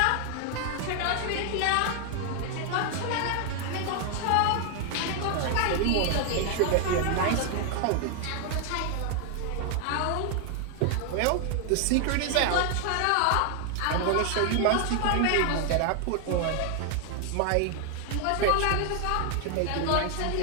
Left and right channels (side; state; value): both; different; correlation 0.00